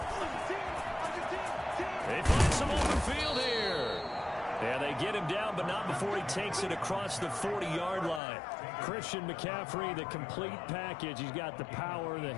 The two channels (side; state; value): right; drops out; at 8.2 s